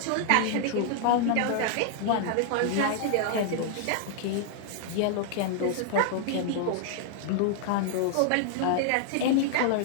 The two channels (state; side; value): different; both; correlation 0.00